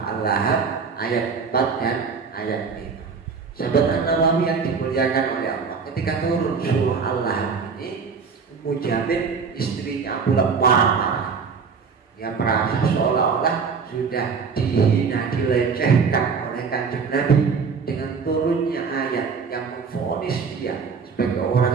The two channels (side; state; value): left; quieter; 5.5 dB